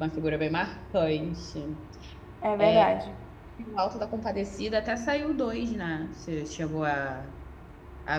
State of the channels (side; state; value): both; identical; correlation 1.00